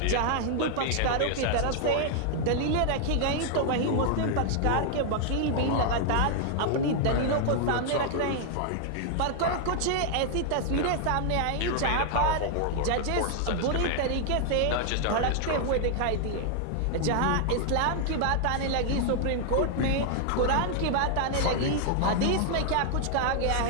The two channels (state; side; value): different; both; correlation 0.00